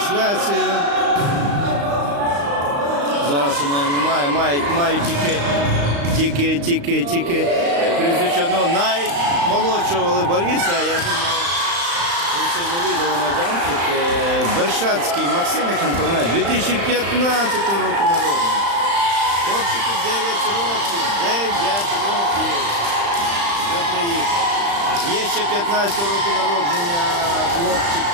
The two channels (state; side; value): late; left; 35 ms